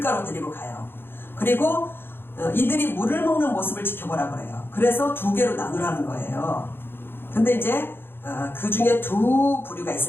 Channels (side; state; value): right; late; 0.10 ms